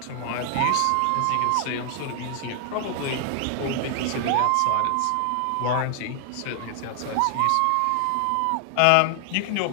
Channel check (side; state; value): both; different; correlation 0.00